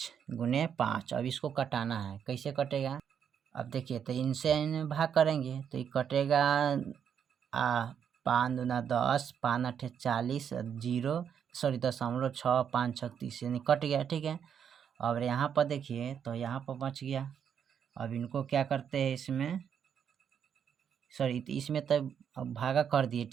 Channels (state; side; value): quieter; left; 8.0 dB